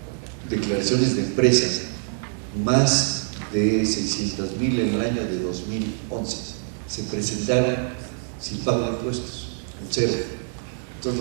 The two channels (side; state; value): left; silent; 59 dB below the other